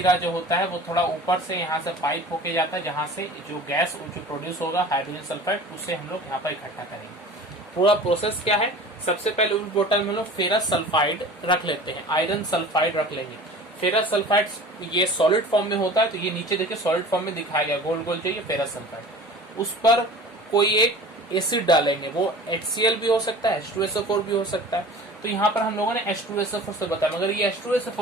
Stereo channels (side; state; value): both; normal; correlation 0.41